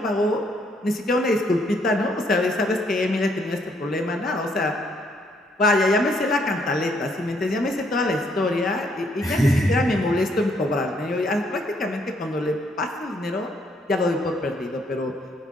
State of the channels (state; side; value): normal; both; correlation 0.70